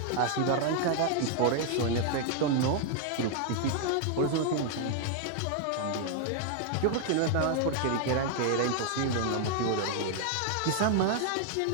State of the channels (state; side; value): different; both; correlation 0.00